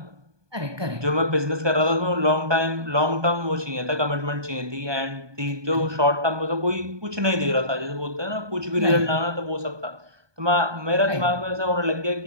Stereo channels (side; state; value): left; late; 1.2 ms